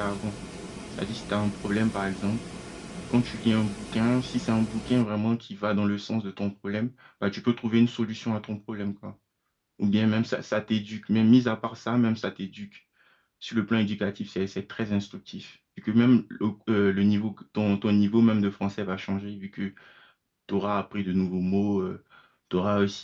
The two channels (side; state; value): both; identical; correlation 1.00